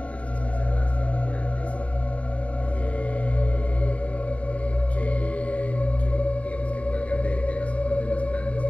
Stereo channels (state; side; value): late; right; 0.066 ms